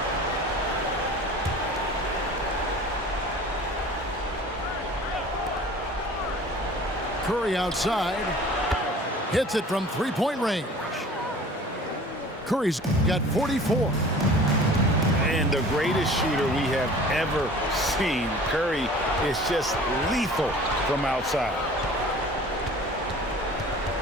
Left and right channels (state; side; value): normal; both; correlation 0.45